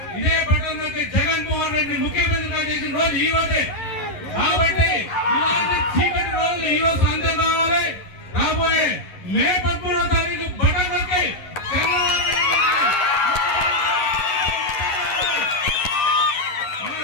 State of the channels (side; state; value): right; late; 11 ms